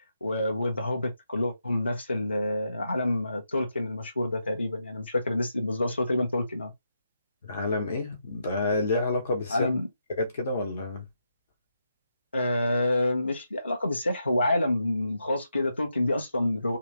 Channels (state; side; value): inverted; both; correlation -0.82